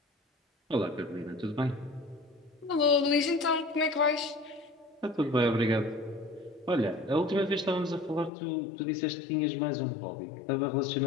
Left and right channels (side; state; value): right; drops out; at 8.3 s